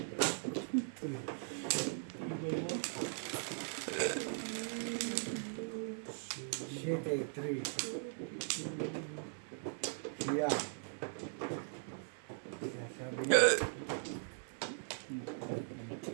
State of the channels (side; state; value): left; silent; 51 dB below the other